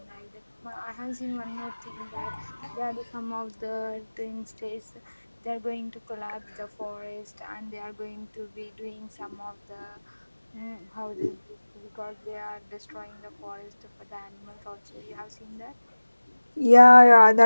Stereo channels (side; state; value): both; inverted; correlation -1.00